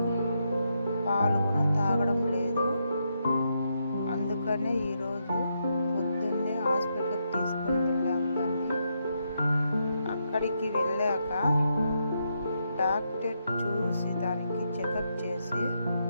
పాలు కూడా తాగడం లేదు. అందుకనే ఈరోజు పొద్దున్నే హాస్పిటల్కి తీసుకొని వెళ్ళాము దాన్ని. అక్కడికి వెళ్ళాక డాక్టర్ చూసి దానికి చెకప్ చేసి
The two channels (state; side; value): inverted; both; correlation -0.81